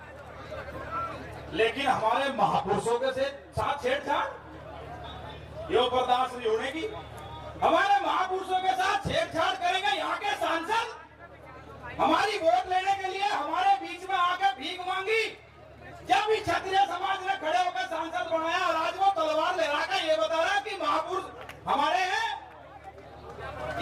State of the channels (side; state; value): both; identical; correlation 1.00